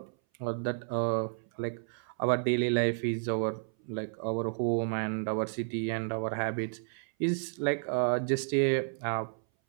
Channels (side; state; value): left; silent; 57 dB below the other